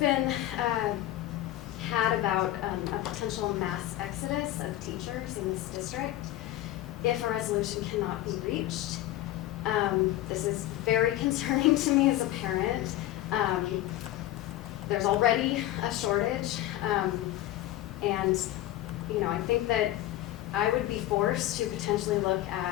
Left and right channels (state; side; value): quieter; right; 14.7 dB